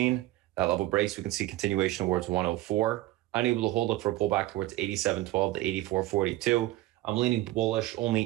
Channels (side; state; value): left; quieter; 17.1 dB